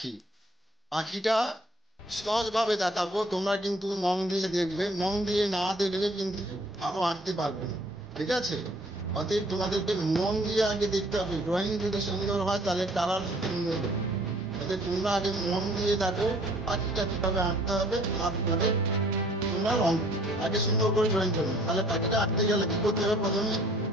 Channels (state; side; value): normal; both; correlation 0.57